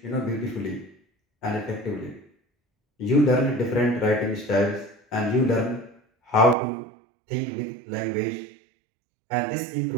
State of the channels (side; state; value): left; drops out; at 6.6 s